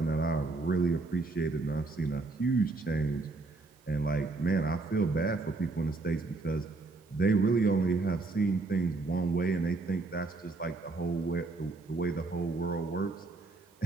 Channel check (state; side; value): quieter; left; 3.5 dB